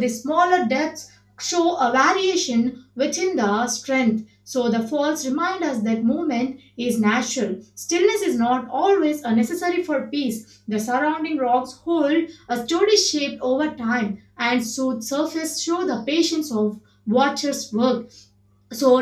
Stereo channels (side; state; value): both; identical; correlation 1.00